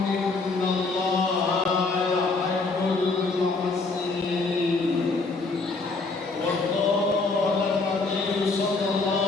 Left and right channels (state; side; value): quieter; right; 3.8 dB